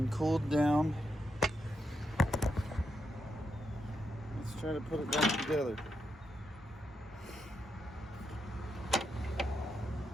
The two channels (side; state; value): both; normal; correlation 0.83